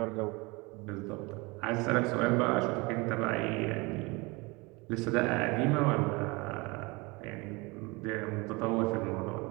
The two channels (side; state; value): left; quieter; 25.8 dB